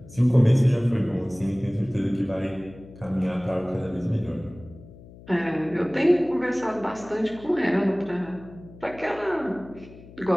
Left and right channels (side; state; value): left; noise; hum, 20 dB below the sound